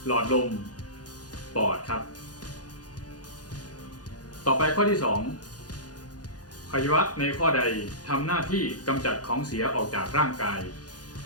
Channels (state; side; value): late; right; 0.69 ms